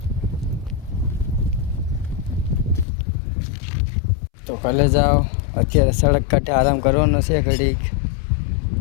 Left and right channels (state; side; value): drops out; right; at 2.9 s